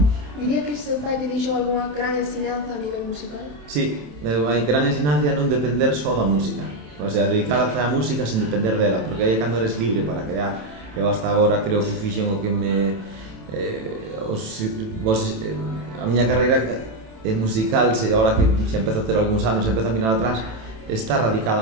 Diría que seu pai lle deixou algunha gran ensinanza a nivel musical? Sí, hai gran ensinanza non depender só da música, o sea, dedicarse á música sen depender dela, porque aí é cando eres libre para crear. Eu hasta agora creo que fixen o que a miña carreira musical, agora que xa empezo a ter algúns anos, empezo a mirar atrás, está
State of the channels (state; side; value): late; left; 27 ms